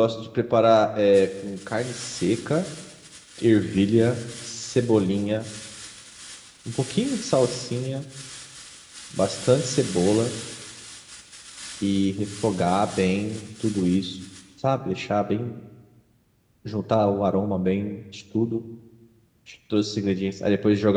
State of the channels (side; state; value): both; identical; correlation 1.00